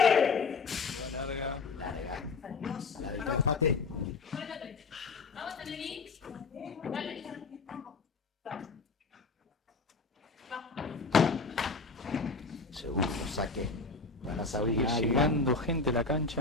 Larga. Larga. La del empate. Vamos a venir. Dale. Segundo saque para Sabrina Águila. Llegando gente a la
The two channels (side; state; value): right; quieter; 4.2 dB